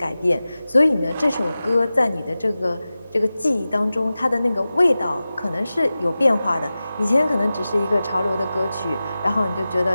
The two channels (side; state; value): both; inverted; correlation -0.95